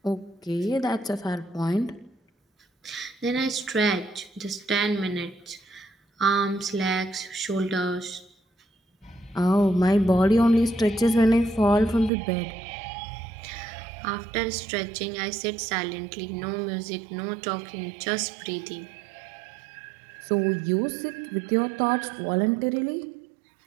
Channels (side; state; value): left; drops out; at 12.1 s